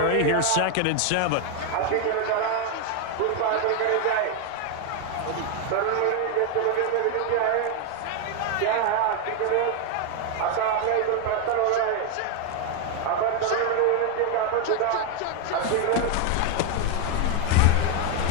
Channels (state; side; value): different; both; correlation 0.01